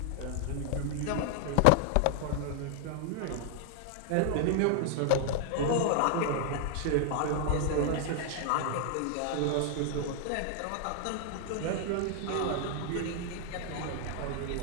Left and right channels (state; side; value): different; both; correlation 0.00